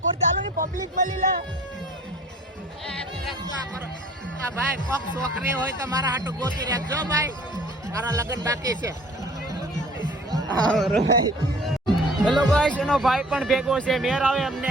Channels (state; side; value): normal; both; correlation 0.50